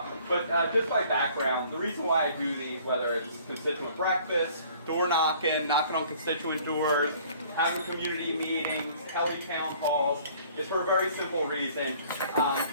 But just by background, the reason why I do these, whether it's constituent breakfast, door knocking, knocking on constituent doors, having community meetings, tele-town halls, is for a very simple reason.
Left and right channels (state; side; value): inverted; both; correlation -0.54